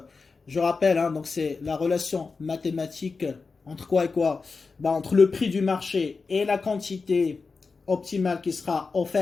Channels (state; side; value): quieter; right; 4.5 dB